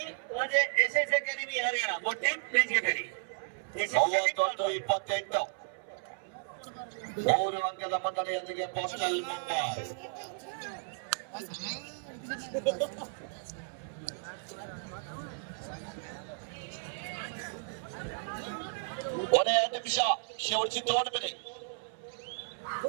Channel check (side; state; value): left; silent; 55 dB below the other